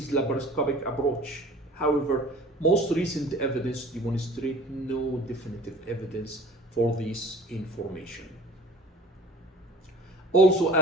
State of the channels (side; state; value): both; normal; correlation 0.44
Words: laparoscopic approach. However, most recent evidence demonstrate no definitive evidence for this information. Also,